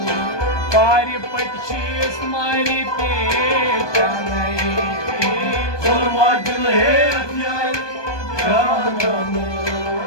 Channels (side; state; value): right; late; 1.2 ms